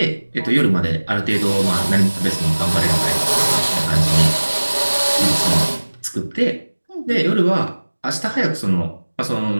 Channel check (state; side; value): inverted; both; correlation -1.00